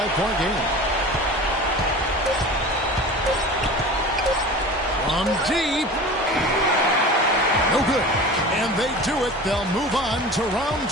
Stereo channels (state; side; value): normal; both; correlation 0.36